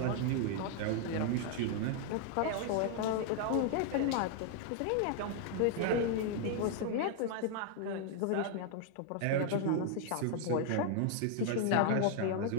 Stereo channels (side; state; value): both; different; correlation 0.00